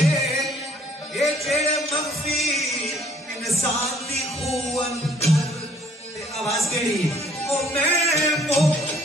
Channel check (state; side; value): normal; both; correlation 0.60